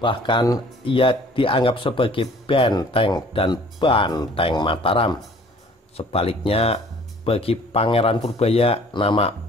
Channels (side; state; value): both; normal; correlation 0.52